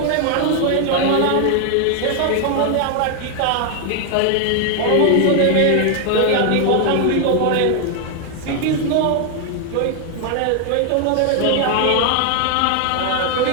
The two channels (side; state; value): both; different; correlation 0.00